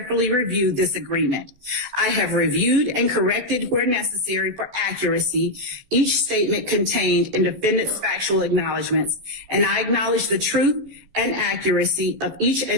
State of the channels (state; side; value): late; left; 14 ms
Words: reviewed this agreement. I have reviewed and corrected where necessary for accuracy each statement contained in defendant's factual acknowledgments, and I acknowledge the truth and accuracy of each